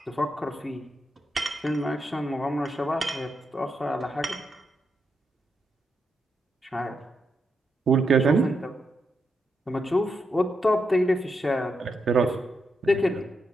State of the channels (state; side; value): normal; both; correlation 0.83